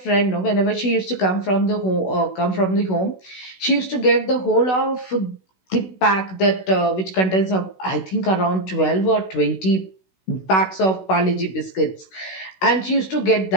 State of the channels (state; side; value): late; right; 16 ms